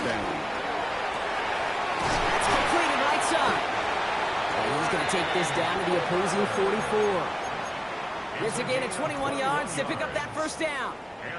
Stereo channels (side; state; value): both; identical; correlation 1.00